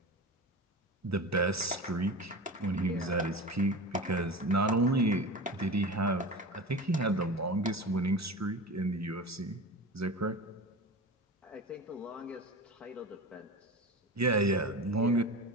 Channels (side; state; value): both; normal; correlation 0.30